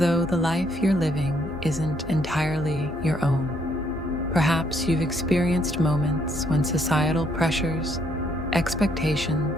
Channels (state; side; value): normal; both; correlation 0.70